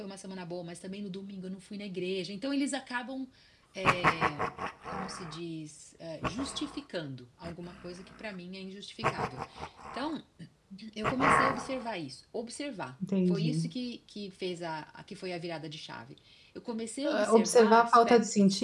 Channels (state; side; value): identical; both; correlation 1.00